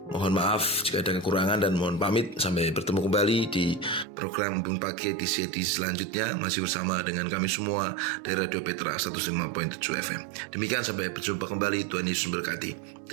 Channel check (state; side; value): drops out; left; at 4.0 s